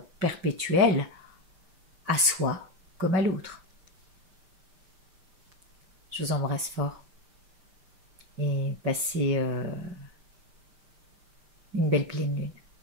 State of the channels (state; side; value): late; left; 5.4 ms